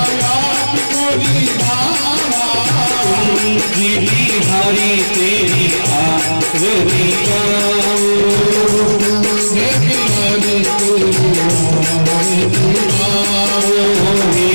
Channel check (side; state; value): both; inverted; correlation -1.00